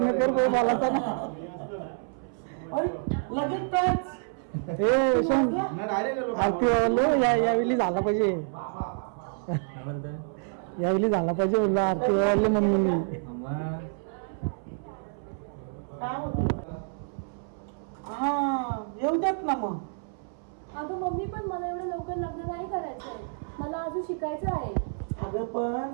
कर बोलायचं ना. लगेच ना डायरेक्ट यावेळी झाला पाहिजे यावेळी झाला पाहिजे बोललो आरती वाढल्या मम्मीनी. येऊ देत ना मग. अगं मम्मी पण मला एवढं लवकर लग्न नाही करायचंय. मला अजून शिकायचं आहे. अगं पण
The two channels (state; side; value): silent; left; 59 dB below the other